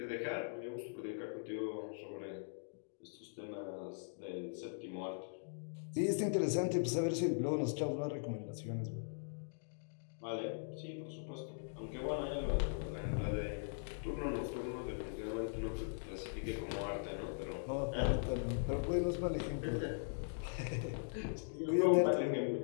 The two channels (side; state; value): right; silent; digital silence